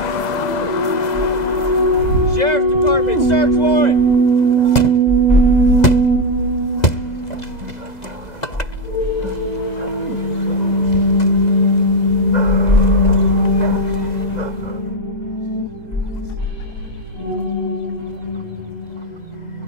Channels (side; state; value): right; late; 2.0 ms